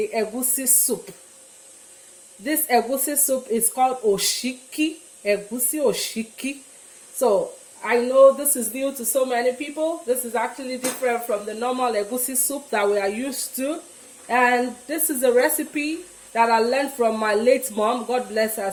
egusi soup. This egusi soup is called Osiki, Egusi Osiki. So I know this is new to so many people. This is actually different from the normal egusi soup that we are used to. And this is a recipe that I learned from my late mom. God bless her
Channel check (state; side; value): identical; both; correlation 1.00